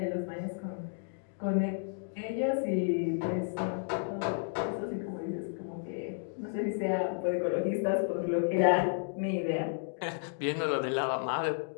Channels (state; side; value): silent; right; digital silence